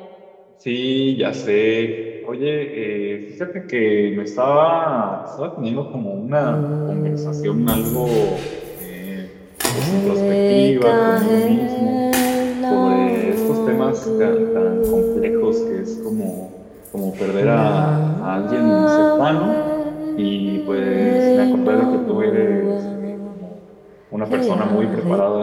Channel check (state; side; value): identical; both; correlation 1.00